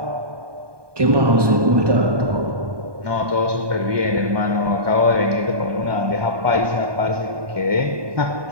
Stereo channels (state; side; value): late; left; 1.2 ms